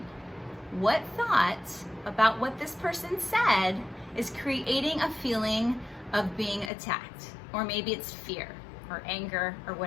What thought about what this person said is creating a feeling of being attacked? Or maybe it's fear or anger or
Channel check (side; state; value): right; drops out; at 6.7 s